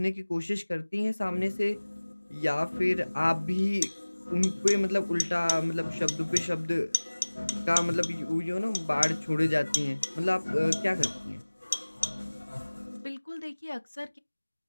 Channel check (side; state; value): both; inverted; correlation -1.00